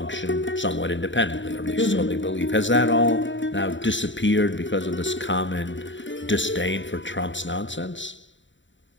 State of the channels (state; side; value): late; right; 0.54 ms